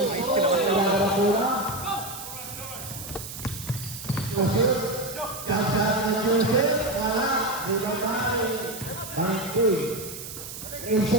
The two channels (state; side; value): noise; right; hiss, 10 dB below the sound